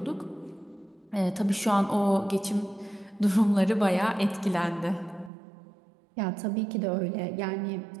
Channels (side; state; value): left; drops out; at 5.3 s